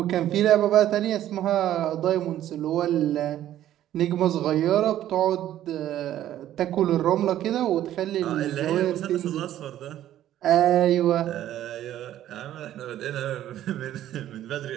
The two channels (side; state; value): left; quieter; 12.4 dB